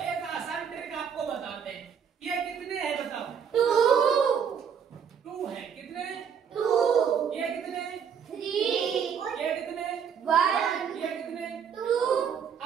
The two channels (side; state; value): left; quieter; 7.4 dB